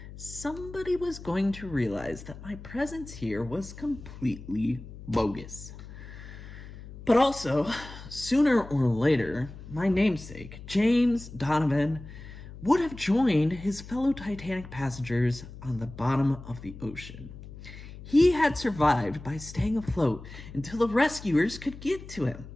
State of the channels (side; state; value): left; noise; hum, 14 dB below the sound